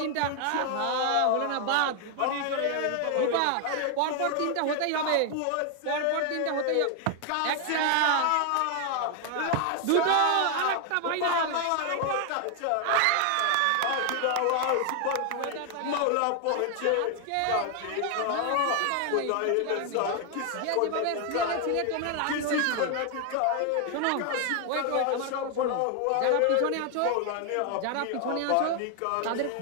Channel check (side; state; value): both; different; correlation 0.01